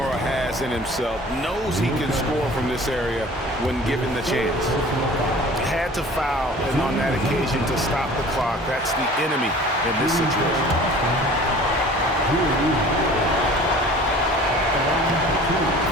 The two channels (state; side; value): normal; both; correlation 0.45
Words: has in himself, knows he can score from this area when given the chance. Had to foul, and on that occasion to stop the clock. That's the enemy in this situation.